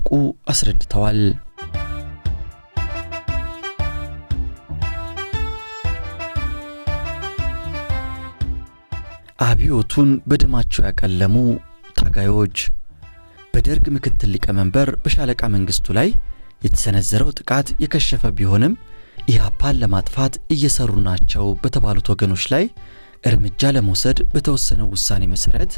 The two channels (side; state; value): both; inverted; correlation -1.00